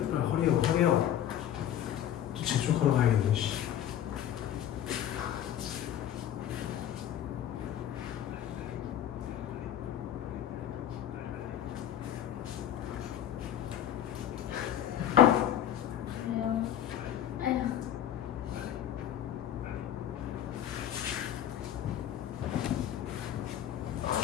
허리요. 또 재촉하러 가야겠네, 씨.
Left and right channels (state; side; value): quieter; right; 10.8 dB